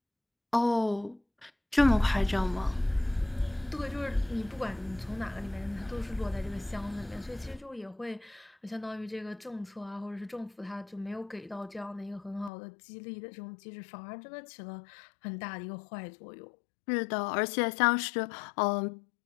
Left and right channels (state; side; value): drops out; right; at 12.5 s